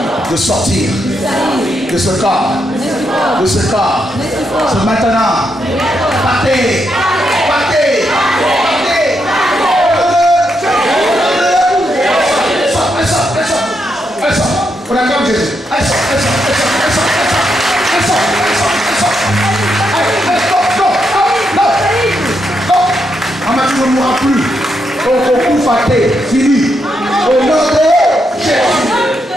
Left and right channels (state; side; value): normal; both; correlation 0.81